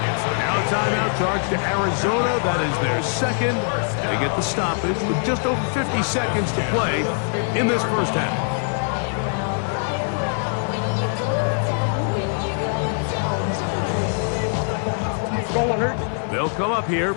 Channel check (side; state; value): right; silent; 64 dB below the other